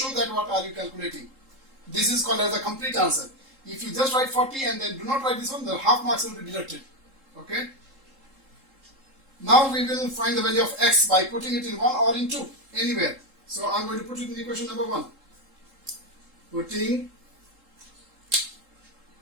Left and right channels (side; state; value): left; late; 3.7 ms